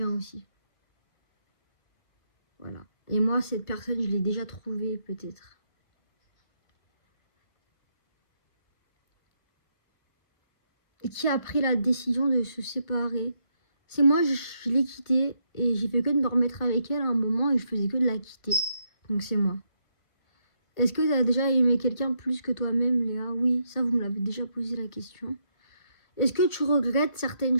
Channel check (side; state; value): right; late; 1.5 ms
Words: aussi. Voilà. Et moi, cette personne, je l'ai déjà trouvée peut-être. Et qui a pris la décision de se séparer. C'est moi, je l'ai quittée et j'ai fait que de me remettre avec elle à un moment et je faisais que de la quitter. Donc c'est moi. Est-ce que tu as déjà aimé quelqu'un plus que toi-même, Léa? Oui, ça vous me l'avez déjà posé la question. Est-ce que tu regrettes certaines